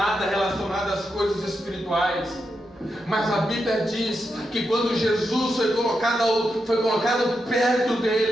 relacionado às coisas espirituais. Mas a Bíblia diz que quando Jesus foi colocado perto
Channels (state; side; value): normal; both; correlation 0.86